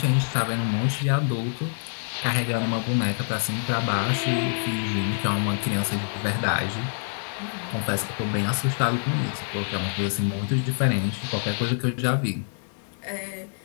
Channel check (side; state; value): right; silent; digital silence